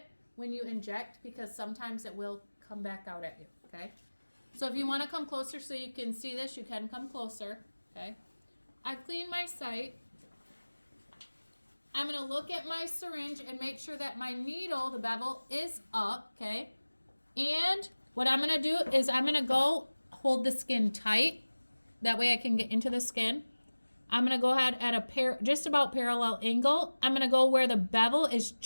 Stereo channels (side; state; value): both; inverted; correlation -1.00